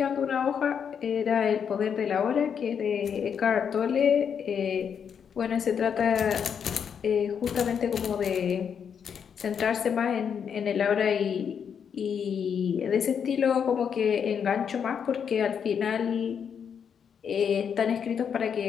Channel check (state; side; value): quieter; right; 7.4 dB